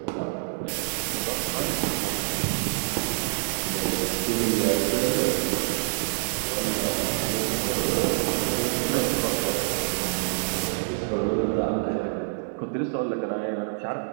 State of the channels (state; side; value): silent; left; digital silence